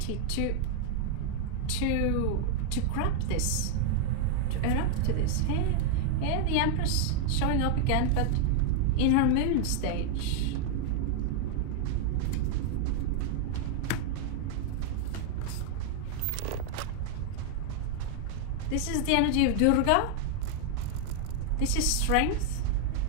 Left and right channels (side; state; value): both; different; correlation 0.00